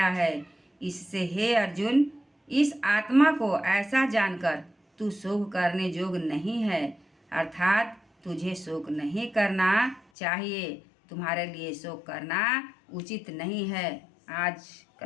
है। इससे हे अर्जुन, इस आत्मा को ऐसा जानकर तू शोक करने योग्य नहीं है, अर्थात तुझे शोक नहीं करना चाहिए। तुम्हारे लिए शोक करना उचित नहीं है। आज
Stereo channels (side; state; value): right; drops out; at 10.0 s